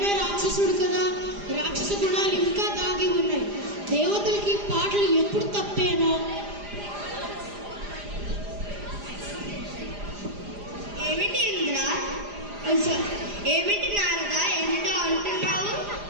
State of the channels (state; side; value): late; left; 4.9 ms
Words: రాక్షసుడు కదా, రాక్షస గుణాలు ఇంకా దాగి ఉన్నాయి. దేవతలకి పాటలు ఎప్పుడు తప్పేనో. ఏమిటి ఇంద్ర, ఏమిటి నారద, ఏమిటో అంటున్నావు?